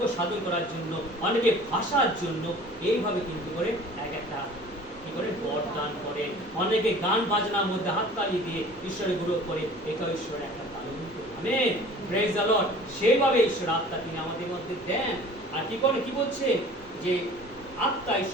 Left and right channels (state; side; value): normal; both; correlation 0.46